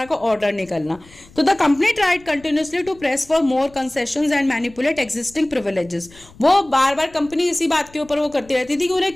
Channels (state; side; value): noise; left; rumble, 25 dB below the sound